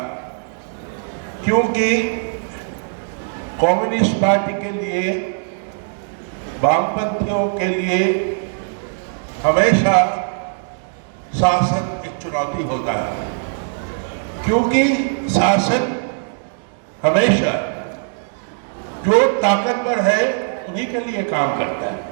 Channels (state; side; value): silent; left; digital silence